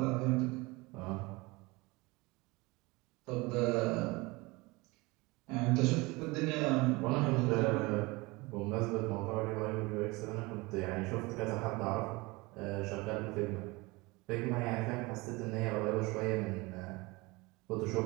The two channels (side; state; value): left; quieter; 23.9 dB